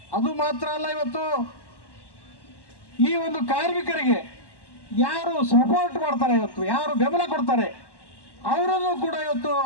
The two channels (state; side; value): late; right; 1.1 ms